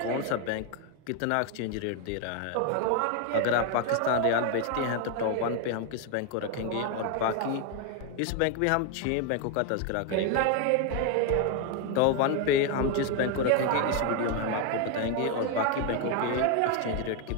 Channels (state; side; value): different; both; correlation 0.01